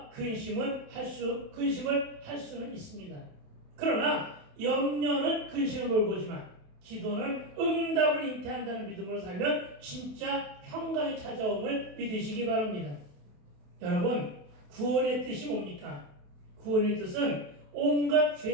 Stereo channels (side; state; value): left; late; 28 ms